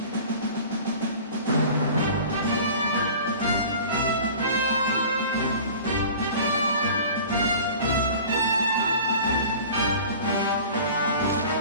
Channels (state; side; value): inverted; both; correlation -0.42